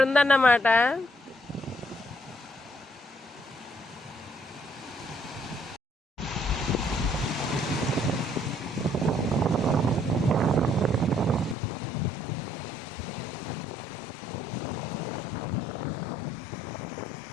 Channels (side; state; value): right; drops out; at 11.6 s